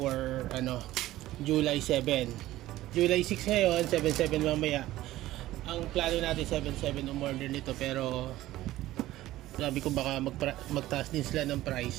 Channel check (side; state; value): left; quieter; 15.7 dB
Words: July 7. July 6 ngayon, 77 mamaya. Ang plano natin 77 umorder nito, pero sabi ko baka magtaas din sila ng